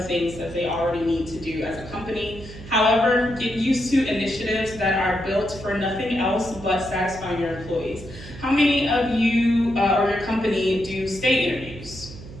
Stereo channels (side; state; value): right; noise; hum, 15 dB below the sound